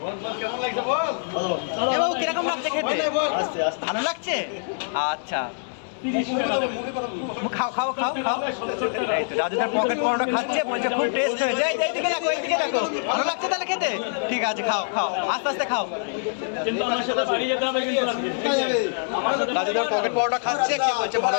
এ বাবু কিরকম লাগছে খেতে? ভালো লাগছে? আচ্ছা, 30 টাকা দেবে। খাও খাও খাও খাও। এই তো রাজুদার পকেট পরোটা খাচ্ছে, বলছে খুব টেস্ট হয়েছে। এইদিকে দেখো, এইদিকে দেখো। ভালো লাগছে তাহলে খেতে? ঠিক আছে, খাও খাও, আস্তে আস্তে খাও। কিন্তু আমার সাথে বাড়ি যেতে হবে কিন্তু রাজুদার পকেট পরোটা খাচ্ছে, কি বলছে ভালো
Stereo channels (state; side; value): silent; right; 60 dB below the other